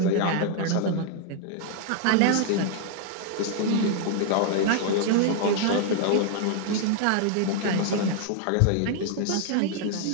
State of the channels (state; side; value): different; both; correlation 0.00